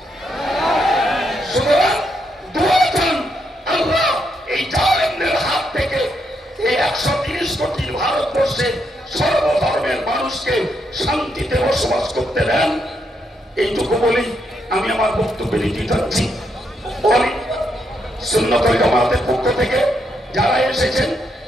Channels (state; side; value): normal; both; correlation 0.78